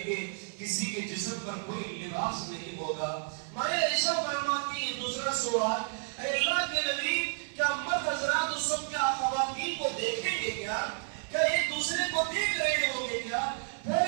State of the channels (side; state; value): left; silent; 57 dB below the other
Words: گے، کسی کے جسم پر کوئی لباس نہیں ہوگا. مائیں عائشہ فرماتی ہیں دوسرا سوال، اے اللہ کے نبی کیا مرد حضرات اس وقت کیا خواتین کو دیکھیں گے کیا ایک دوسرے کو دیکھ رہے ہوں گے کیا؟ پھر